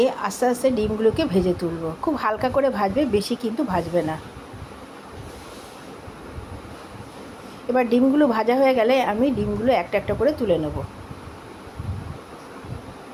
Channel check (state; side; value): identical; both; correlation 1.00